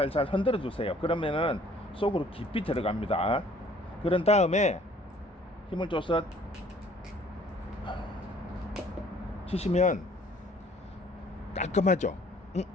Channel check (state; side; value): normal; both; correlation 0.57